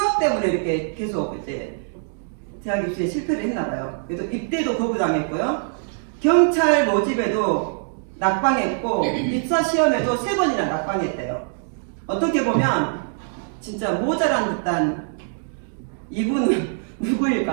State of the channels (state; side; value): silent; left; digital silence